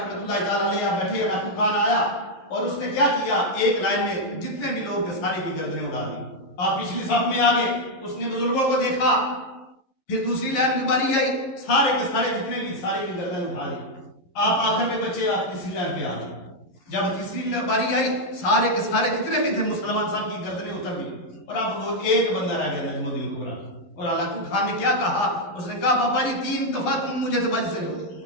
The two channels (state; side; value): late; right; 11 ms